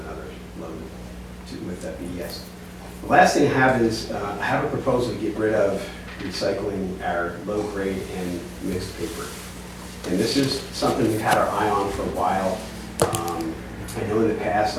load with that BDS. The last thing I have is, I have a proposal to get rid of recycling our low grade and mixed paper. And this is something we've had our eye on for a while. I know in the past,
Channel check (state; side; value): identical; both; correlation 1.00